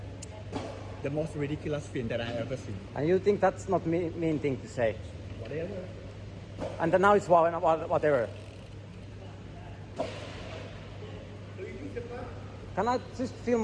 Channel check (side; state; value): both; identical; correlation 1.00